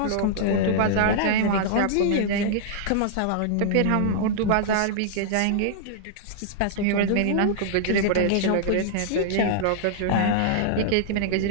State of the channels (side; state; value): both; different; correlation -0.01